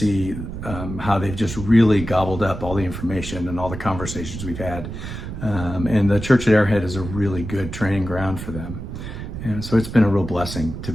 how they've just really gobbled up all the information and all the conversations we've had. And the church at Arrowhead is a really good training ground for them. And so it's been a real blessing to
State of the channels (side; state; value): right; noise; rumble, 8 dB below the sound